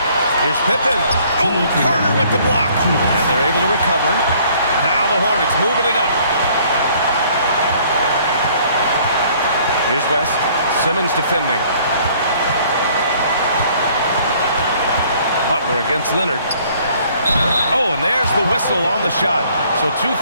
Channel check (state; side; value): inverted; both; correlation -0.59